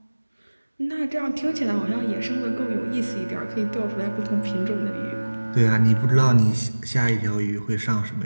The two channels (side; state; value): both; inverted; correlation -1.00